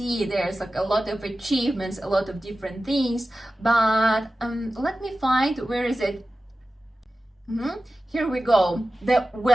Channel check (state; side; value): normal; both; correlation 0.94